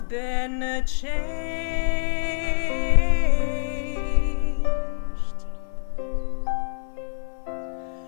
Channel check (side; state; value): right; silent; digital silence